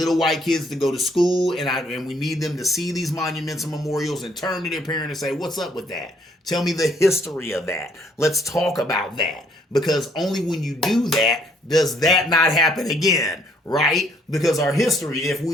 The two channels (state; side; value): normal; both; correlation 0.66